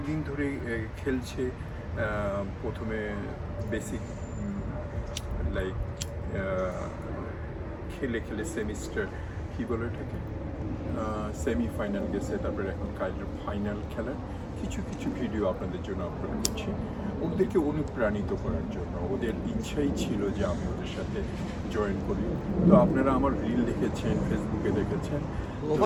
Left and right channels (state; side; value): identical; both; correlation 1.00